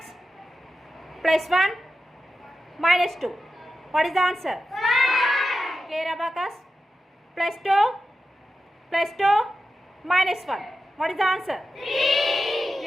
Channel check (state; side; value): normal; both; correlation 0.91